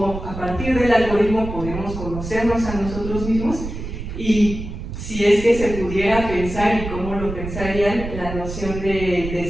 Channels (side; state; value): right; noise; rumble, 8 dB below the sound